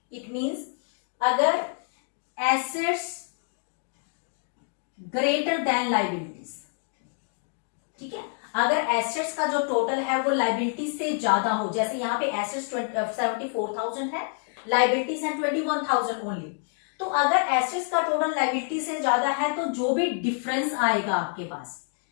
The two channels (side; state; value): right; silent; 60 dB below the other